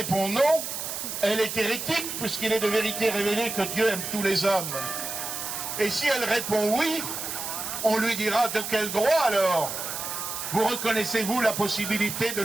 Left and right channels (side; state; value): right; noise; hiss, 5 dB below the sound